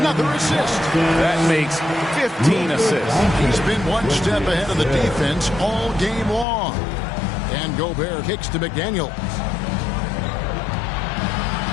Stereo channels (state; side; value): drops out; right; at 6.5 s